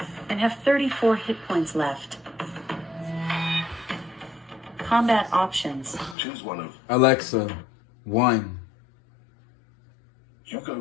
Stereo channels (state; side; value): drops out; right; at 6.2 s